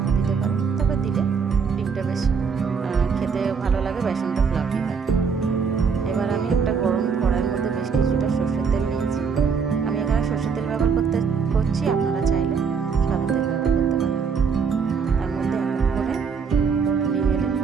দিতে পারেন, তবে দিলে ডিমটা বেশ খেতে ভালো লাগে, বেসন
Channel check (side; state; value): left; quieter; 5.9 dB